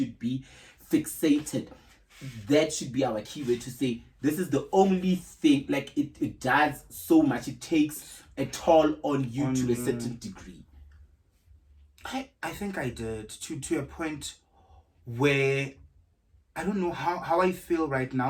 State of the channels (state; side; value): identical; both; correlation 1.00